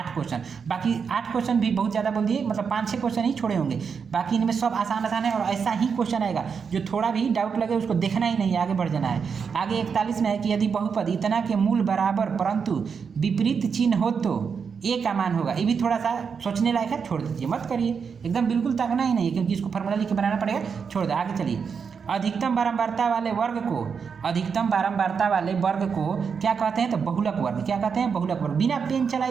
क्वेश्चन, बाकी 8 क्वेश्चन भी बहुत ज़्यादा बोल दिए, मतलब 5-6 क्वेश्चन ही छोड़े होंगे, बाकी इनमें सब आसान है और ऐसा ही क्वेश्चन आएगा। जो थोड़ा भी डाउट लगे उसको देखना ही नहीं, आगे बढ़ जाना है। आगे 41 में है कि यदि बहुपद इतना के मूल बराबर परंतु विपरीत चिन्ह हो तो ए का मान होगा। ये भी थोड़ा सा सोचने लायक है, छोड़ दीजिए, मत करिए, एकदम बिल्कुल ताकना ही नहीं है क्योंकि इसको फॉर्मूला लिख के बनाना पड़ेगा, छोड़ दे। आगे चलिए, अधिकतम बारंबारता वाले वर्ग को क्या कहते हैं? तो बहुलक वर्ग। क्या कहते हैं? बहुलक वर्ग। बिना पेन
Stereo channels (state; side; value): quieter; left; 6.1 dB